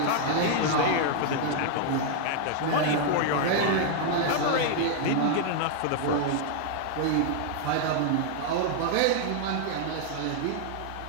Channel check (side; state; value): both; different; correlation 0.00